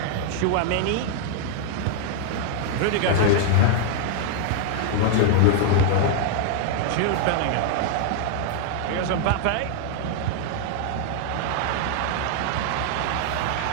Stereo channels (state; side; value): different; both; correlation 0.00